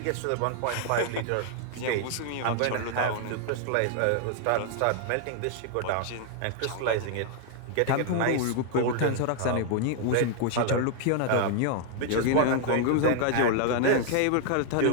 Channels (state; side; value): different; both; correlation 0.00